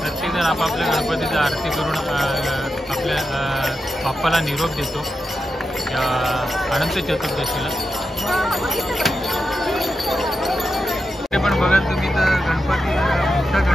आपापल्या गणपतीचा आरती करून आपल्या बाप्पाला निरोप देतो या अनंत चतुर्दशीला. ते पण बघाल तुम्ही तर गणपती मोठा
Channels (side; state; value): both; normal; correlation 0.88